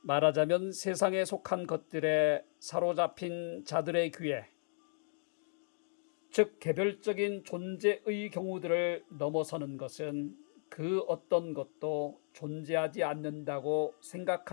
말하자면 세상에 속한 것들에 사로잡힌 자들의 귀에, 즉 개별적인 존재의 경우들을 넘어서는 것은 그 어떤 것도 존재하지 않는다고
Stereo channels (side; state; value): right; silent; digital silence